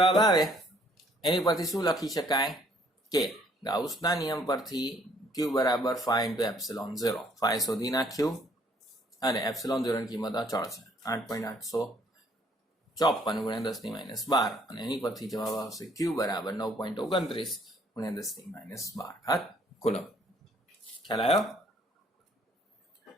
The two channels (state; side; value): normal; both; correlation 0.63